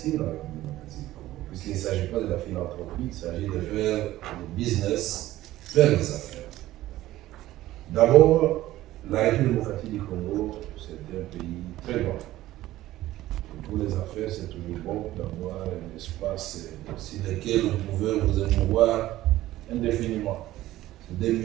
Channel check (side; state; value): left; quieter; 15.4 dB